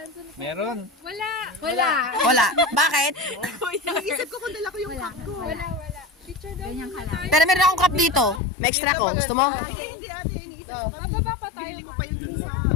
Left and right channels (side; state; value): right; drops out; at 8.4 s